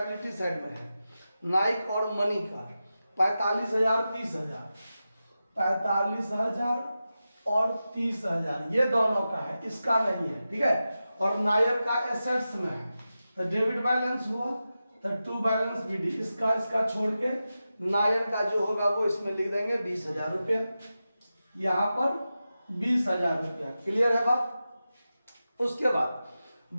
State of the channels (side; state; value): both; inverted; correlation -0.92